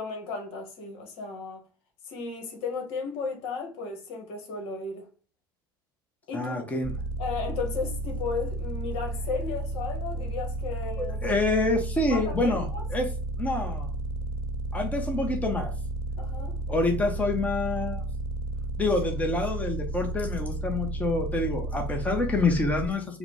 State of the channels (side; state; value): both; normal; correlation 0.48